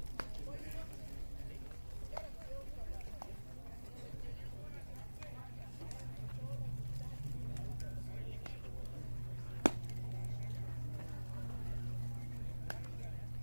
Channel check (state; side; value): inverted; both; correlation -1.00